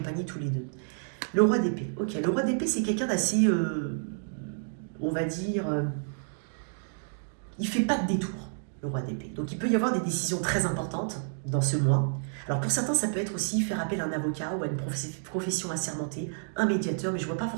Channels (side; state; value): left; silent; digital silence